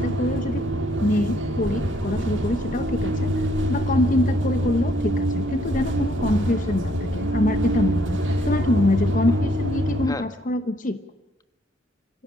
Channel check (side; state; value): both; normal; correlation 0.68